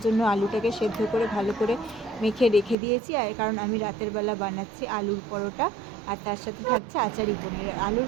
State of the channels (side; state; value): left; drops out; at 2.8 s